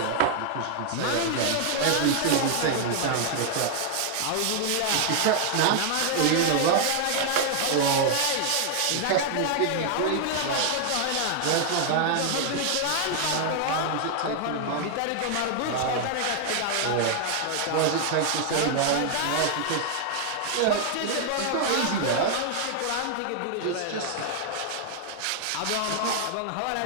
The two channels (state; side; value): different; both; correlation 0.00